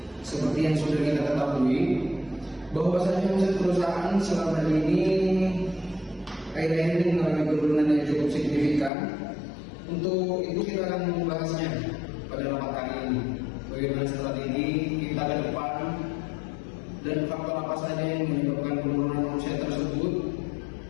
Seperti yang sudah kita ketahui, bahwasanya omset perusahaan selama ini akhir-akhir ini mengalami penurunan yang cukup signifikan. Untuk itu kita akan membahasnya pada rapat kali ini. Bagaimana strategi kita ke depan dan faktor apa saja yang menyebabkan penurunan omset tersebut,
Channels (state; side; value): drops out; right; at 8.9 s